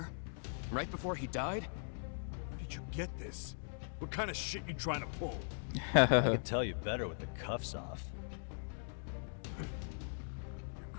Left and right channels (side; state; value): right; silent; digital silence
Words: Right before he died? Where did you get this? What kind of shit you trying to pull? I could tell you better with the cuffs off. You're